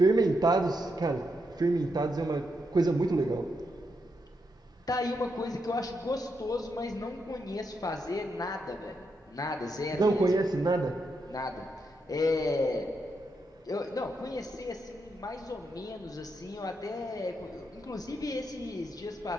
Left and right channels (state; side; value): normal; both; correlation 0.82